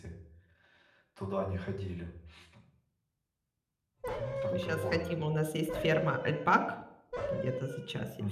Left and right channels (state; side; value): identical; both; correlation 1.00